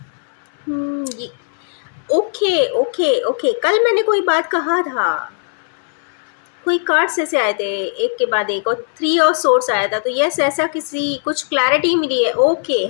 ये ओके ओके ओके, कल मैंने कोई बात कहा था, कोई कार्ड्स ऐसे आए थे एक के बाद एक और 3 ऑफ सोर्स आया था। तो यस, ऐसा किसी कुछ क्लैरिटी मिली है। ओके,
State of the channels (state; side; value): silent; right; 67 dB below the other